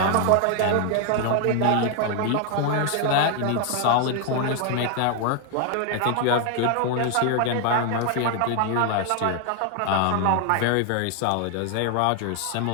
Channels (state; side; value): different; both; correlation 0.00